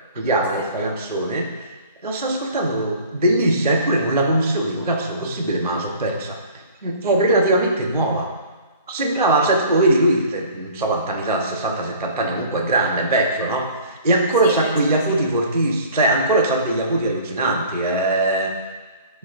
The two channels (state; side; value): inverted; both; correlation -0.47